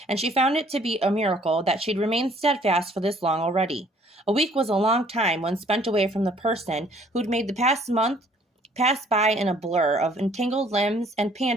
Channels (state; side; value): normal; both; correlation 0.59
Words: and she found it to be a miracle that she'd remained steadfast for this long already. A week was a long time when spent away from the person who'd made the past month pass by in a blur of entangled limbs and